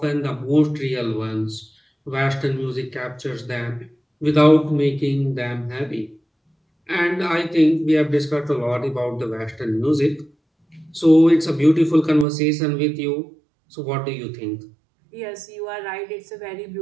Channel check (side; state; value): left; drops out; at 12.2 s